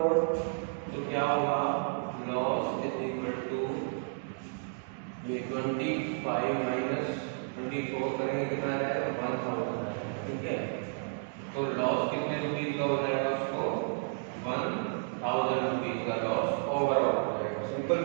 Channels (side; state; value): left; silent; digital silence